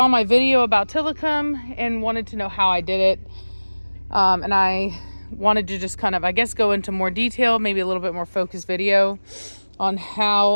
my video about Tillicum and wanted to know how I did it. And I wanted to just kind of, I guess, go into more detail, maybe a little bit more focused video on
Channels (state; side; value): inverted; both; correlation -1.00